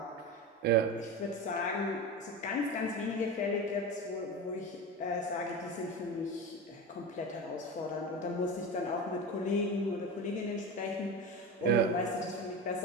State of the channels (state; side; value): normal; both; correlation 0.25